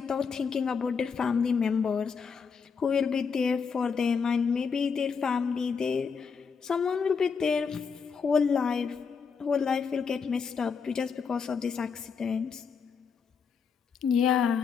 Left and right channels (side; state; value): right; quieter; 5.9 dB